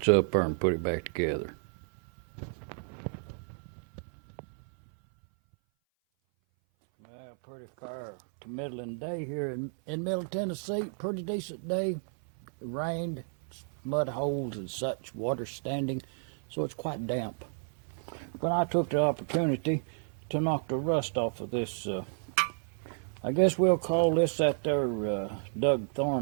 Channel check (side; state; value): left; silent; 57 dB below the other